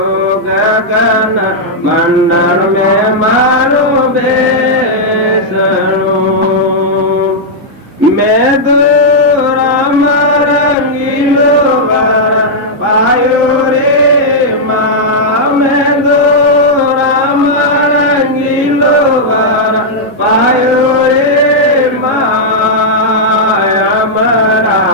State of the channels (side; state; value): both; normal; correlation -0.06